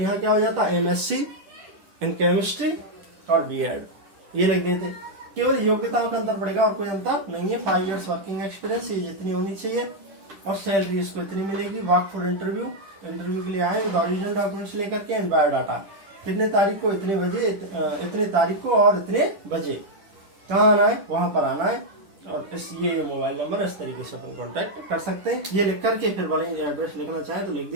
क्या हो जाता? एमएससी इन केमिस्ट्री और बीएड, ये लिख देते। केवल योग्यताओं का अंतर पड़ेगा और कोई अंतर नहीं है। 5 इयर्स वर्किंग एक्सपीरियंस ये जितनी होनी चाहिए और सैलरी इसको इतनी मिलेगी। वर्क फॉर इंटरव्यू, इंटरव्यू के लिए आए विद ओरिजिनल डॉक्यूमेंट्स लेकर के एंड बायोडाटा। कितने तारीख को? इतने बजे, इतने तारीख को और इतने बजे। कहाँ आना है? वहां पर आना है। और इस ये मोबाइल नंबर इस तरीके से अपन कॉन्टेक्ट कर सकते हैं। ये लिख करके फिर वाले एड्रेस लिखना चाहें तो लिख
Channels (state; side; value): late; left; 10 ms